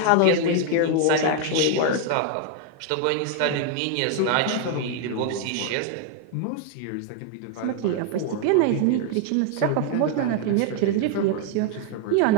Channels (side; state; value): both; different; correlation 0.00